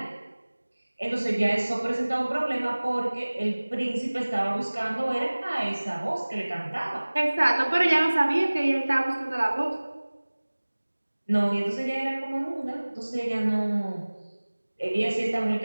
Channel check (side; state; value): both; inverted; correlation -1.00